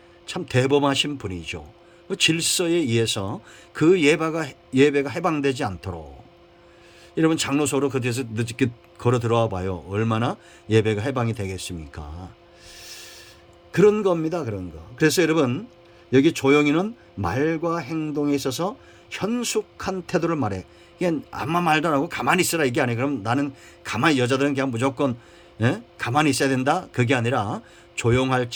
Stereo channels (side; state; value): both; identical; correlation 1.00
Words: 참 대범하신 분이죠. 그 질서에 의해서 그 예배가 해방되지 않도록. 여러분, 장로소로 그 뒤에서 늦게 걸어 들어와 봐요. 얼마나 예배가 해방이 되겠습니까? 그런 겁니다. 그런 거. 그래서 여러분, 여기 조용히는 말과 행동에 있어서 현숙한 태도를 말해. 이게 아무 말도 안 하고 가만히 있으라, 이게 아니에요. 그럼 나는 가만히, 여자들은 그냥 무조건 가만히 있어야 된다, 그게 아니라